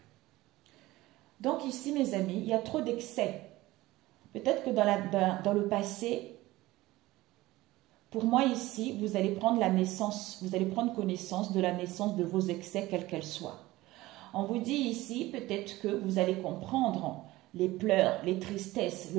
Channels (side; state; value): left; quieter; 18.3 dB